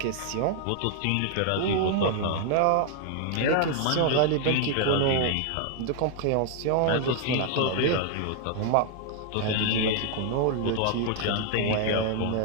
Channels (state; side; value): different; both; correlation 0.00